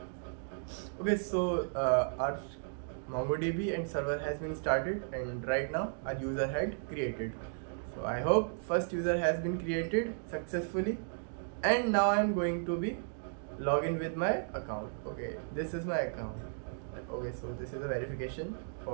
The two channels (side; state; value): left; silent; digital silence